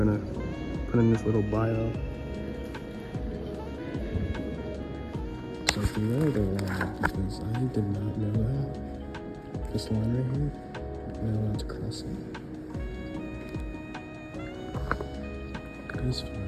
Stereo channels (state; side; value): identical; both; correlation 1.00